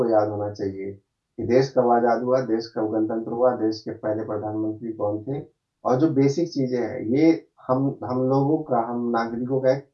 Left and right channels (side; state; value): both; identical; correlation 1.00